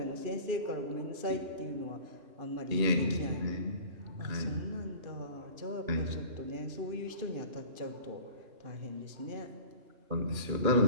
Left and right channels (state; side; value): late; left; 2.4 ms